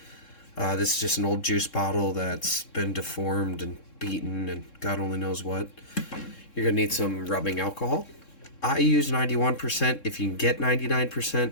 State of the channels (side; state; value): right; late; 3.7 ms